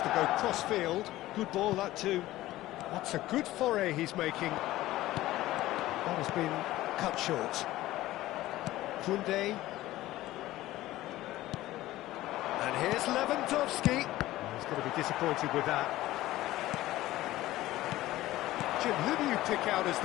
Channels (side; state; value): right; quieter; 16.2 dB